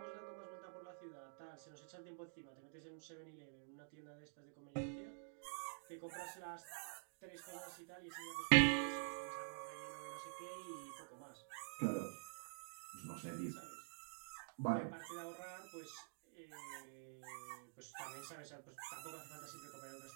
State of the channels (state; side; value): silent; left; digital silence